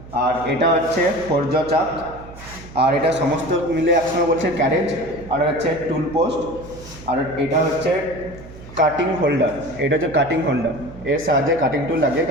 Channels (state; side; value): noise; right; hum, 17 dB below the sound